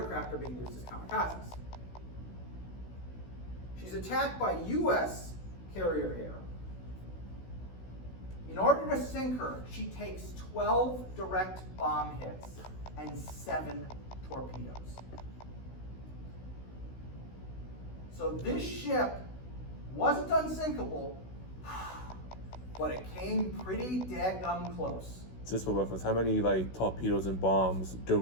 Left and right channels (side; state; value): right; late; 16 ms